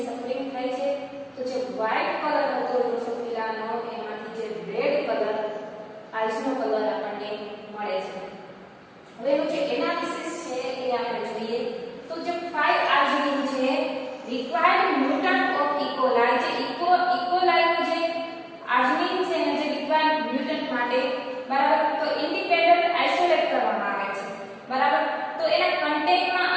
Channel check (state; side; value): identical; both; correlation 1.00